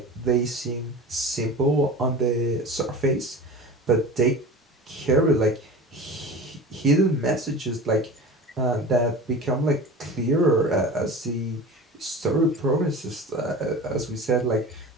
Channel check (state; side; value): normal; both; correlation 0.35